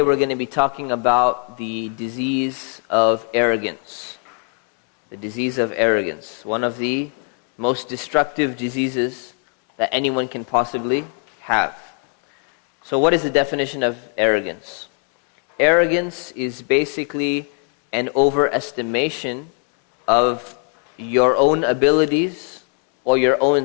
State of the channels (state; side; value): quieter; right; 38.7 dB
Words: we're going to be talking about the disease of arrogance. The disease of arrogance, one of the most destructive diseases that anyone can possibly have. So what is the definition of arrogance? Arrogance is basically an overestimation of your own abilities or your